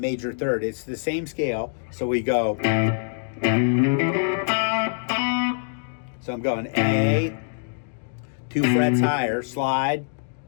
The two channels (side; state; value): right; silent; digital silence